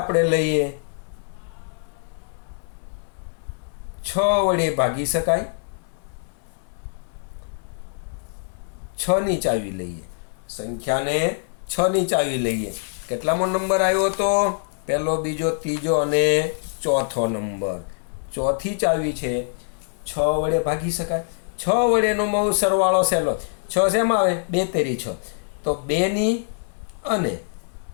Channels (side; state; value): right; silent; digital silence